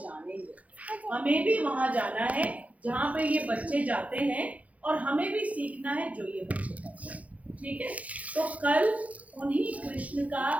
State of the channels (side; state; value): left; late; 0.068 ms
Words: हमें भी वहां जाना है जहाँ पे ये बच्चे जाते हैं, और हमें भी सीखना है जो ये बच्चे करते हैं, ठीक है। तो कल उन्हीं कृष्ण का